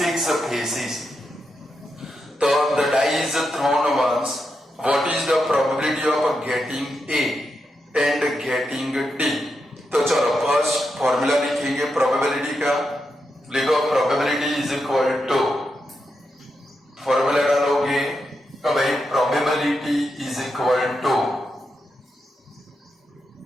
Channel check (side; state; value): both; normal; correlation 0.85